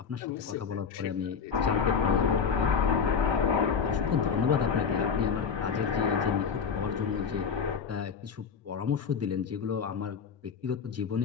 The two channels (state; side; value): quieter; right; 6.3 dB